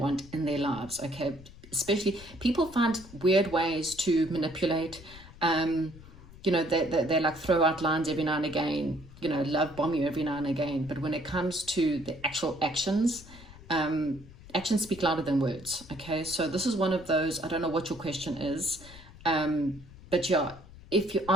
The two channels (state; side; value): noise; left; rumble, 19 dB below the sound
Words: in their lives. Okay, especially people find weird ways to manipulate. They like throw out lines every now and again, love bomb you every now and again. But when it comes to the actual actions, actions speak louder than words. Okay, so this is one of those, I don't know what your question is, but yeah, if you're